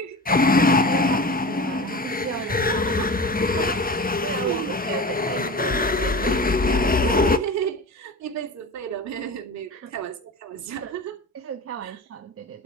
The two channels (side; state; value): both; normal; correlation 0.31